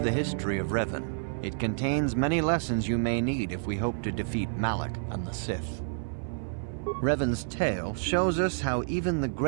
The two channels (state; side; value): silent; left; 58 dB below the other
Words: history of Revan. It contains many lessons you may need if we hope to defeat Malak and the Sith. Revan's tale shows us how even the